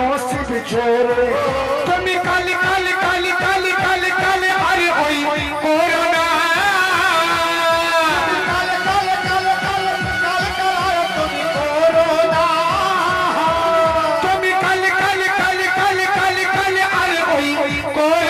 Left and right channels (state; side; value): identical; both; correlation 1.00